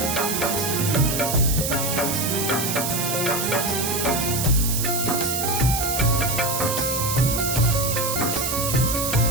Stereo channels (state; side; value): noise; right; hiss, 1 dB below the sound